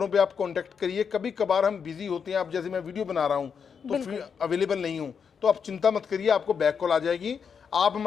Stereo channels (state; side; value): quieter; right; 6.6 dB